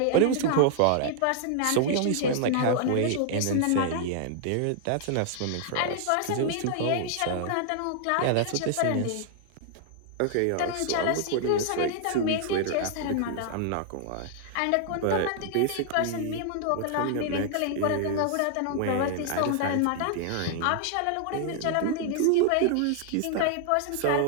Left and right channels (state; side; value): different; both; correlation 0.00